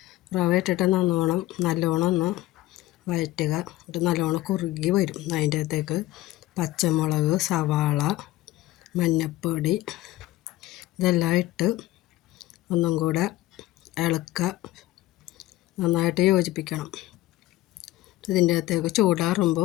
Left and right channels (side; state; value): right; quieter; 16.4 dB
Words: റവ ഇട്ടിട്ട് നല്ലോണം ഒന്ന് വഴറ്റുക. എന്നിട്ട് നല്ലോണം കുറുകി വരും. അതിൻ്റെ അകത്തേക്ക് പച്ചമുളക്, സവാള, മഞ്ഞൾപ്പൊടി ഇതെല്ലാം ഇട്ട് ഒന്നും കൂടെ ഇളക്കുക. നന്നായിട്ട് യോജിപ്പിക്കണം. ഇതിൻ്റെ അകത്തേക്ക്